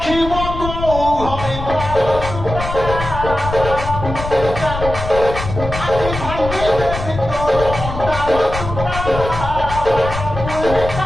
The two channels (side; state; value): left; noise; rumble, 7 dB below the sound